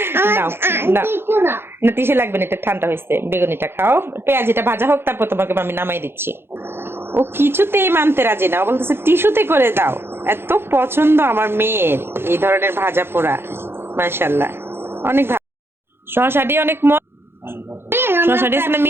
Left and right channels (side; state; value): left; late; 0.11 ms